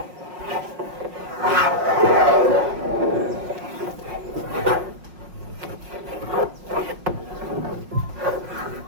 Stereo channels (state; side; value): late; left; 5.5 ms